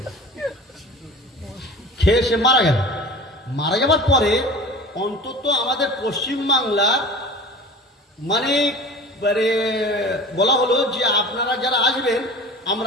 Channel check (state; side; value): normal; both; correlation 0.39